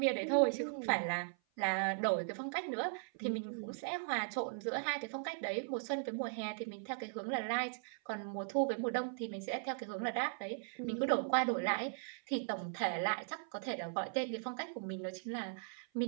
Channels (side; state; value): left; silent; 52 dB below the other